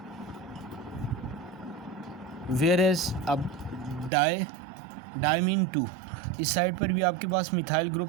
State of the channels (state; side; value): drops out; left; at 4.1 s